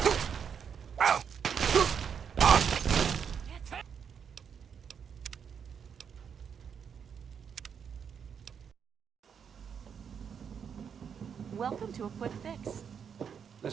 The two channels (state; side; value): quieter; left; 7.3 dB